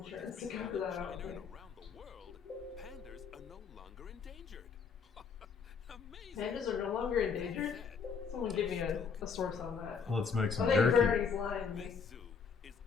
to cover that, I don't think. Around the world, pandas are no longer endangered. Amazing. Pandas are no longer endangered? Someone give me a source on that. Let's make some I think jerky. Bernie's lying to me.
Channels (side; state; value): right; quieter; 5.8 dB